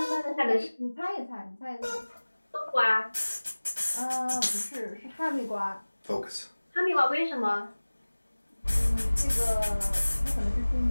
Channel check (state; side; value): inverted; both; correlation -1.00